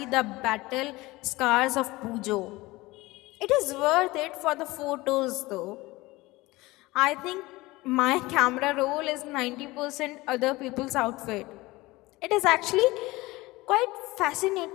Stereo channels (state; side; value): quieter; right; 20.6 dB